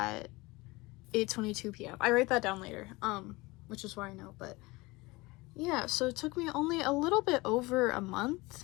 8:22 p.m. I write that down later, which is why I know, but yeah, so it took me only a little bit over a month,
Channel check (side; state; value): right; quieter; 22.6 dB